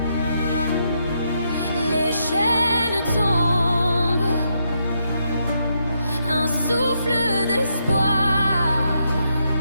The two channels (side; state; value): both; inverted; correlation -0.79